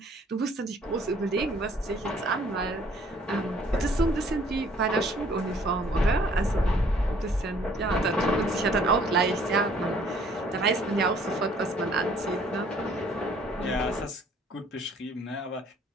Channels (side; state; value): both; normal; correlation 0.59